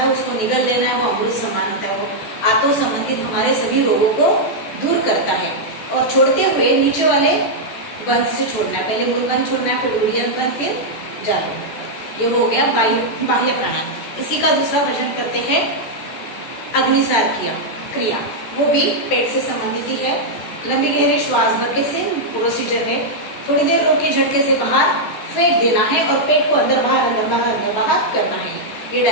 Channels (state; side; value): late; right; 14 ms